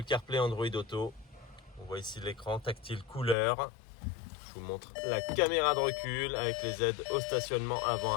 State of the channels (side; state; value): right; drops out; at 3.4 s